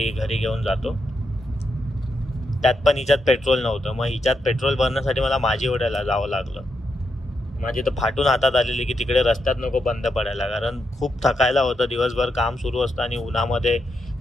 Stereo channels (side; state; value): both; normal; correlation 0.83